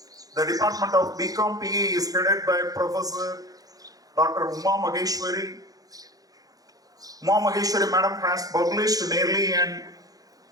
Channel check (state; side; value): late; left; 0.18 ms